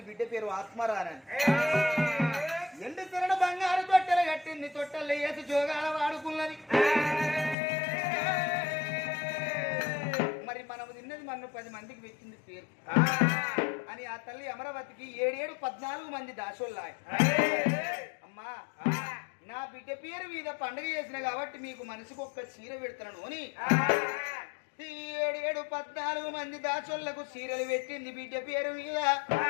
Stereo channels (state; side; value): drops out; right; at 7.6 s